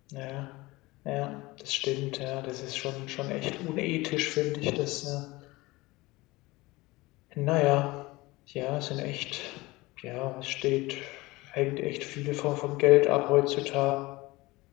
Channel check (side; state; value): right; quieter; 21.2 dB